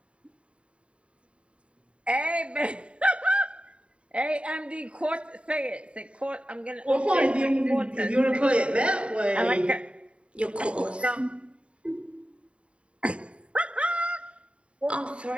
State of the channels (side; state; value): left; late; 0.060 ms